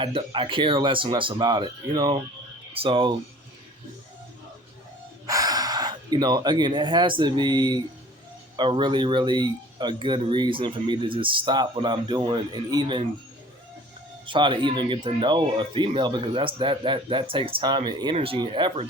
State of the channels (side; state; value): both; normal; correlation 0.48